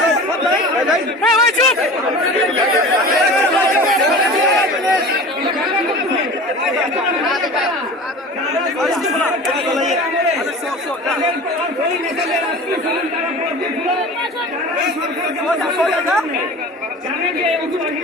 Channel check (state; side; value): normal; both; correlation 0.37